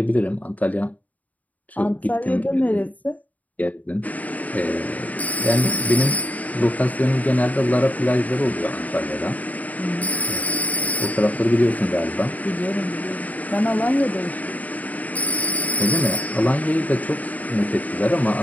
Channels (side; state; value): right; late; 0.073 ms